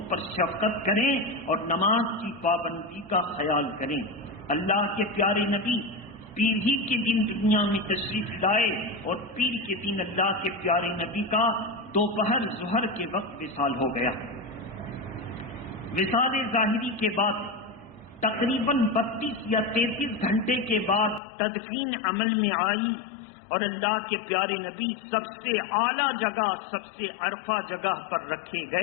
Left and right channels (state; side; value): drops out; right; at 21.2 s